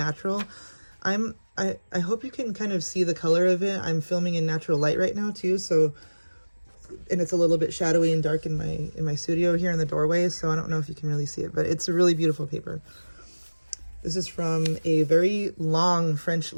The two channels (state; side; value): inverted; both; correlation -1.00